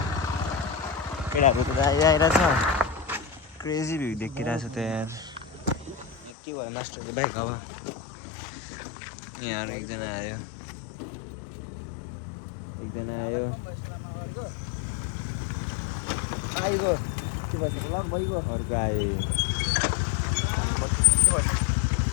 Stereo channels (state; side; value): drops out; right; at 6.3 s